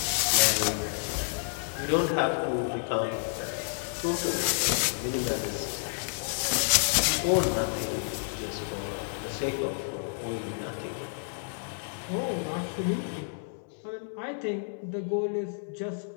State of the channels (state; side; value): silent; right; digital silence